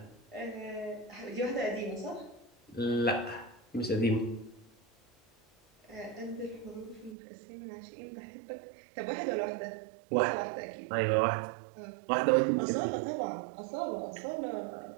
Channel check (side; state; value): left; drops out; at 7.2 s